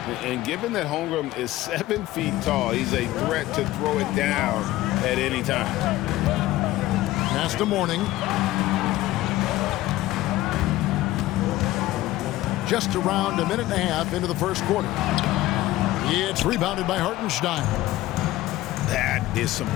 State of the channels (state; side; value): quieter; right; 16.4 dB